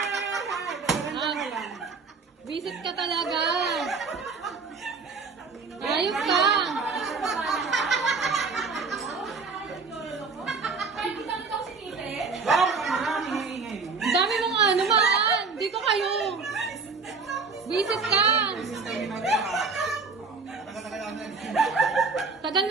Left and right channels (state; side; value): quieter; left; 4.6 dB